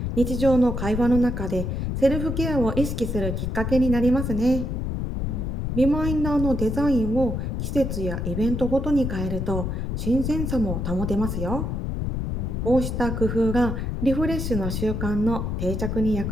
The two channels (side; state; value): left; noise; rumble, 2 dB below the sound